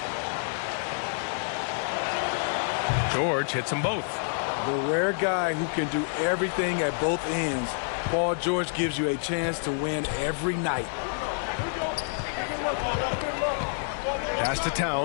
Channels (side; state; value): right; silent; digital silence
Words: George hits them both. The rare guy who can do everything at both ends. Paul George gives you a chance to win every night. Pass to